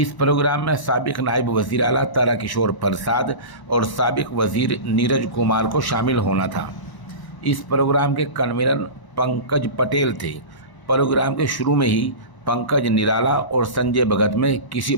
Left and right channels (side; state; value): right; late; 1.0 ms